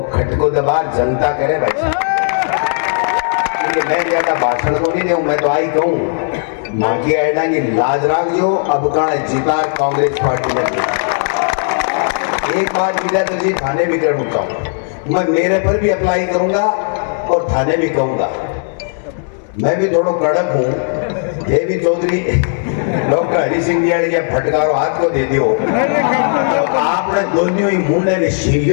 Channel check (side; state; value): right; silent; 69 dB below the other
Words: खटको दबार जनता करे भाई। मैं ज्यादा भाषण को नहीं दूं, मैं तो आई कहूं माकी आयडा की लाज राख जो अब का जीता कांग्रेस पार्टी में। एक बात विजय तो जी थाने भी कर उठता हूं, मैं मेरे पर भी अप्लाई करूंगा और थाने भी कहूंगा। मैं भी थोड़ा कड़क हूं, ये भी चौधरी डॉक्टर हरि सिंह जी के फटकारो हाथ को दे दियो तो आपने दोनों ही मुंडे ने